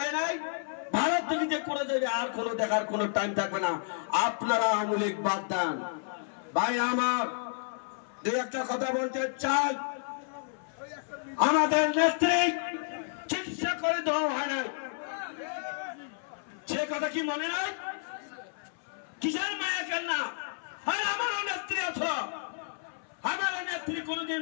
নাই, ভারত থেকে যে করে যাবে আর কোনো দেখার কোনো টাইম থাকবে না। আপনারা আওয়ামী লীগ বাদ দেন। ভাই আমার দুই একটা কথা বলতে চাই। আমাদের নেত্রী চিকিৎসা করে দেওয়া হয় না, সে কথা কি মনে নাই? কিসের মায়া কেন না? আর আমারও নেত্রী আছো, আমার নেত্রী কোনদিন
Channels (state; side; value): silent; right; 57 dB below the other